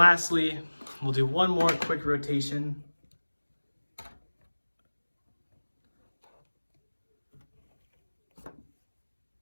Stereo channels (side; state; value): both; inverted; correlation -1.00